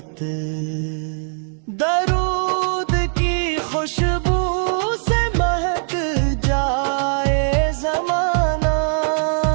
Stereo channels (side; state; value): left; silent; 57 dB below the other